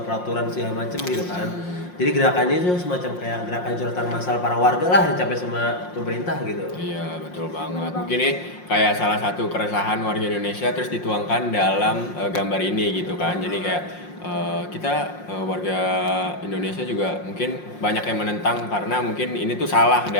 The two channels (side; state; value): right; late; 5.6 ms